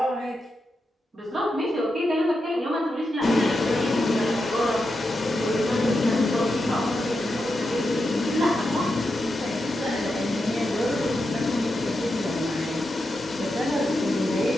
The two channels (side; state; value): both; normal; correlation 0.87